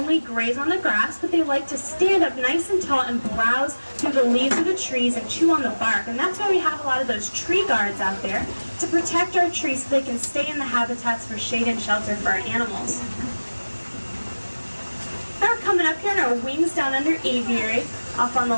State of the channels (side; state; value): both; inverted; correlation -1.00